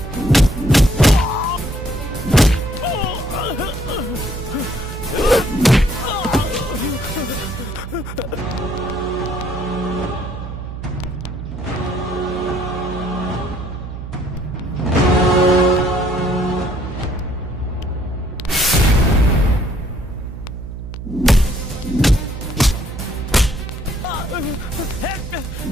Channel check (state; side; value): noise; right; hum, 9 dB below the sound